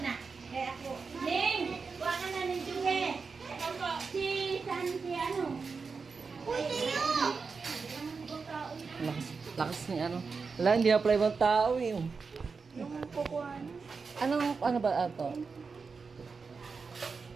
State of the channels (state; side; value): quieter; left; 4.9 dB